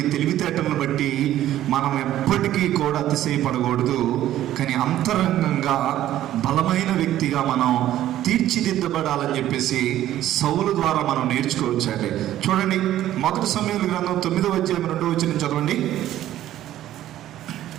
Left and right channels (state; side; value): quieter; left; 12.9 dB